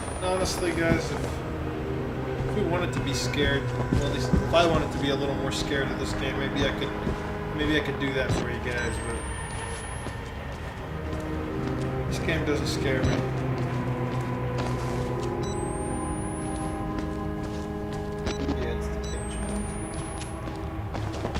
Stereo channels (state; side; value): identical; both; correlation 1.00